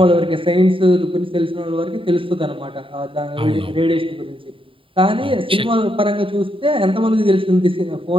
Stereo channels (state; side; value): late; left; 0.25 ms